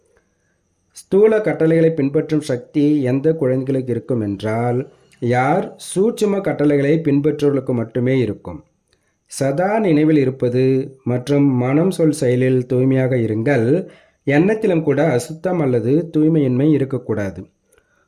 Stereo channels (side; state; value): both; identical; correlation 1.00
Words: ஸ்தூல கட்டளைகளை பின்பற்றும் சக்தி எந்த குழந்தைகளுக்கு இருக்கும் என்றால், யார் சூட்சும கட்டளைகளை பின்பற்றுவர்களுக்கு மட்டுமே இருக்கும். சதா நினைவில் இருப்பது மற்றும் மனம் சொல் செயலில் தூய்மையாக இருங்கள். எண்ணத்திலும் கூட அசுத்தம் அல்லது தூய்மையின்மை இருக்கக்கூடாது.